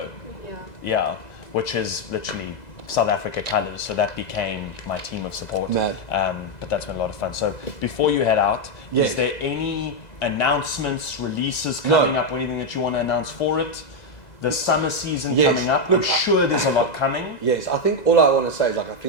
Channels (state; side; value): late; right; 2.0 ms